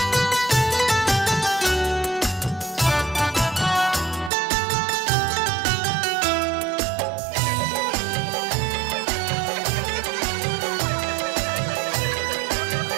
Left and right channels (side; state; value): left; drops out; at 4.3 s